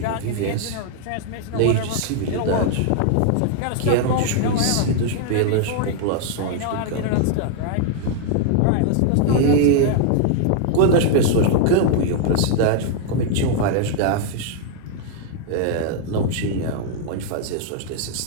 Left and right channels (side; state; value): both; different; correlation 0.00